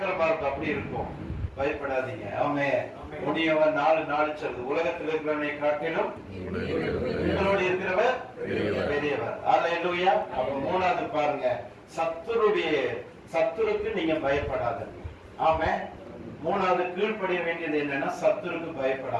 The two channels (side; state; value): both; identical; correlation 1.00